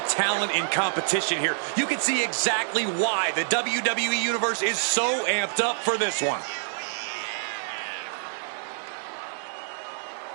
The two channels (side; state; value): left; silent; 60 dB below the other